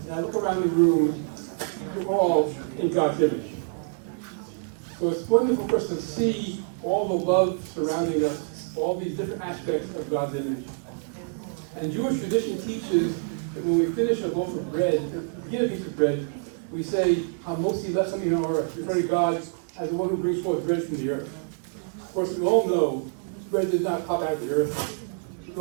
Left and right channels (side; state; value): left; silent; digital silence